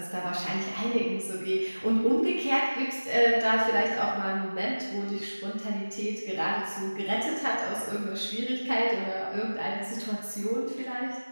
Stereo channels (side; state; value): both; inverted; correlation -1.00